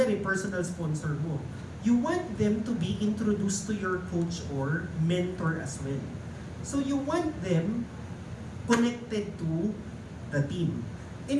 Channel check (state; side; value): identical; both; correlation 1.00